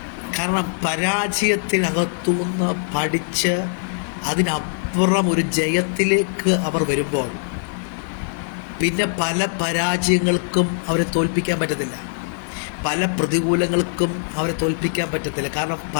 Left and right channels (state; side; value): silent; right; 64 dB below the other